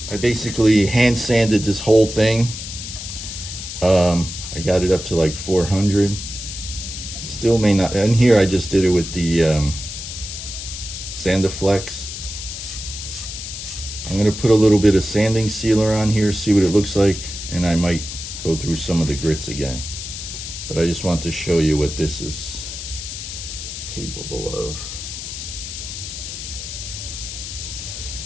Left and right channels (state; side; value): noise; left; hiss, 8 dB below the sound